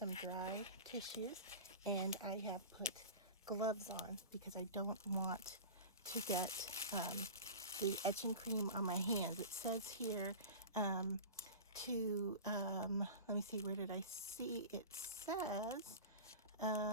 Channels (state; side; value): inverted; both; correlation -0.32